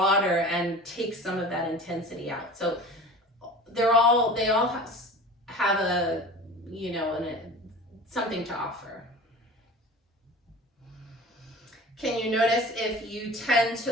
and takes some of that intensity out. So they all have a, something to offer. Can you notice if you tend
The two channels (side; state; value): both; normal; correlation 0.38